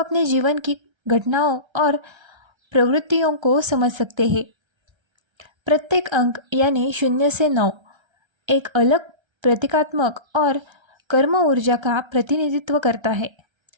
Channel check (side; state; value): left; late; 1.3 ms